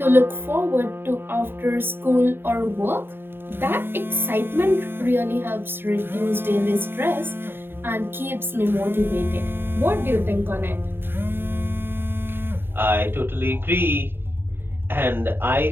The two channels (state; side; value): late; left; 0.10 ms